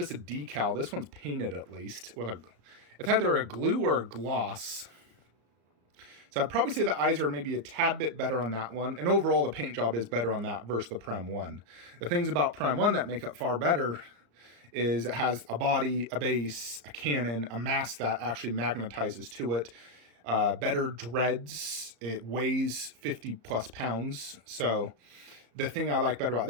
a decal. This one's painted at least. It's either a glue or a gloss. So I'd probably say the eyes are maybe a tad bit better on that one. And overall, the paint job is better on that versus the Prem 1. The things about Prem 1 that make it far better is it has a body, a base, a cannon, a mask that actually magnetizes to it. Better dreads. It weighs 50 plus pounds. So the thing I like better about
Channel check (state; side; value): late; left; 34 ms